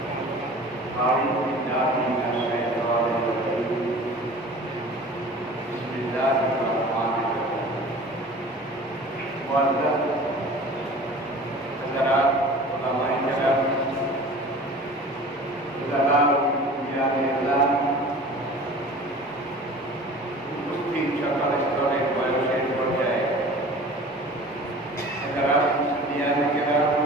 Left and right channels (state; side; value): normal; both; correlation 0.42